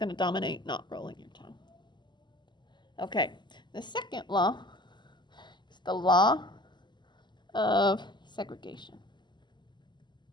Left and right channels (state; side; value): late; right; 0.22 ms